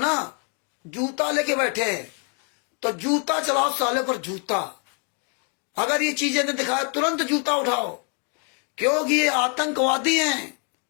जूता लेके बैठे हैं, तो जूता चलाओ साले पर जूता। अगर ये चीजें नहीं दिखाए, तुरंत जूता उठाओ, क्योंकि ये आतंकवादी हैं,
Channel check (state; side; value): quieter; right; 39.0 dB